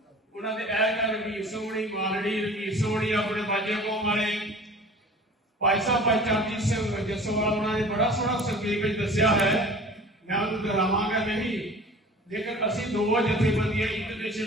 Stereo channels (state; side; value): normal; both; correlation 0.44